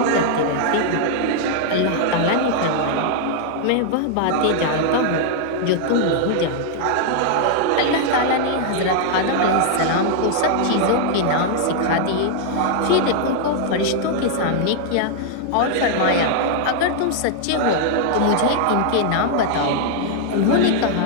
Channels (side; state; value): both; different; correlation 0.00